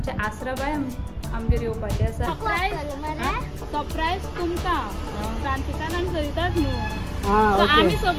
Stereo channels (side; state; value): both; identical; correlation 1.00